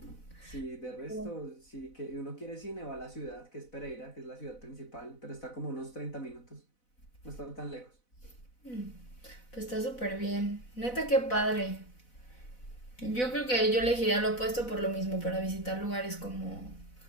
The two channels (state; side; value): late; right; 4.0 ms